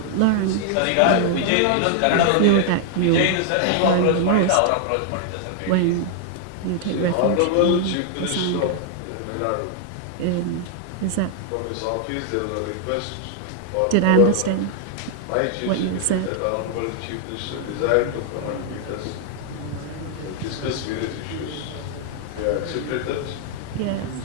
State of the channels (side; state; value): both; different; correlation 0.00